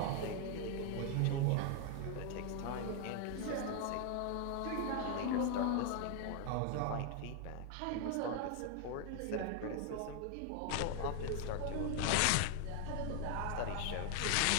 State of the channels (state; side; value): different; both; correlation 0.00